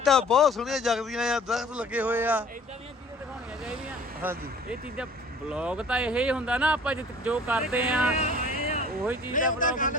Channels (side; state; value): both; normal; correlation 0.49